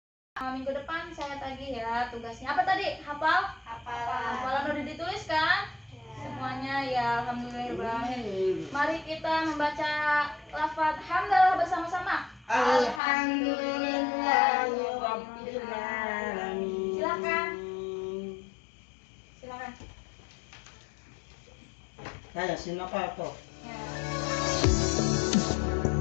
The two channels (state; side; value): drops out; right; at 13.0 s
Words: minggu depan saya tagih ya tugasnya. Apa tadi? Hafalan udah ditulis kan? Semuanya ya, alhamdulillahirrahmanirrahim. Mari kita membaca lafaz hamdalah bersama-sama. Alhamdulillahirrabbilalamin. Silakan. Saya silakan kok. Ya.